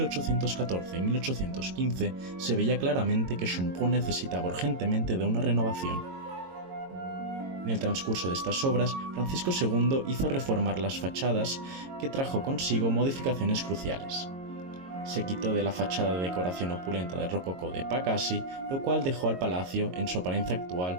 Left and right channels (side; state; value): left; late; 22 ms